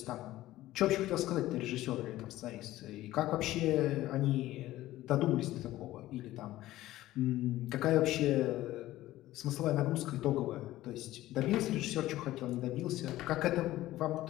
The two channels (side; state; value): right; quieter; 15.7 dB